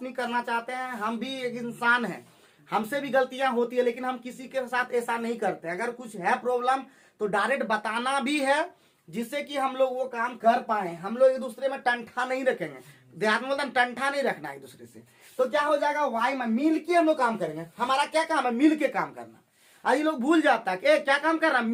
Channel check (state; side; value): identical; both; correlation 1.00